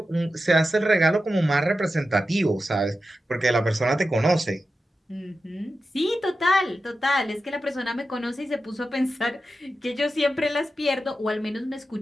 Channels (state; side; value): normal; both; correlation 0.91